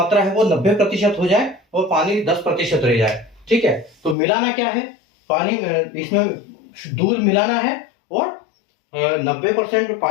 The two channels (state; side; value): drops out; right; at 4.2 s